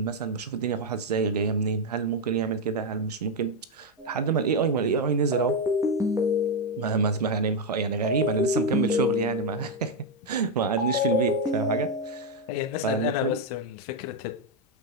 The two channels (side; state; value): both; normal; correlation 0.03